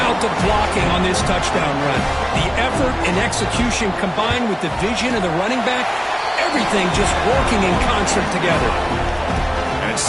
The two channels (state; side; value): identical; both; correlation 1.00